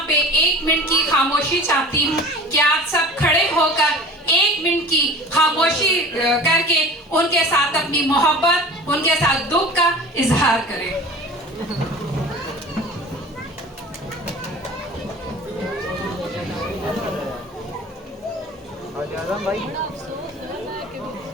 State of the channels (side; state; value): both; normal; correlation 0.40